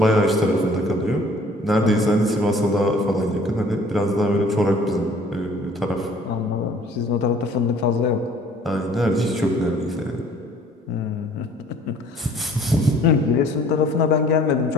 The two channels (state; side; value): normal; both; correlation 0.54